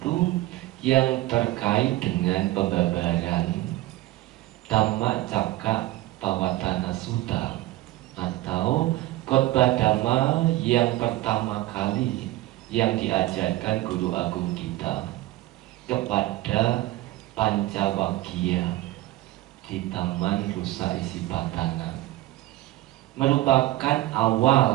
yang terkait dengan pembabaran Dhammacakkappavattana Sutta, atau khotbah Dhamma yang pertama kali yang diajarkan Guru Agung kita kepada Pancawaggiya di Taman Rusa Isipatana, merupakan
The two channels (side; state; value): left; quieter; 16.9 dB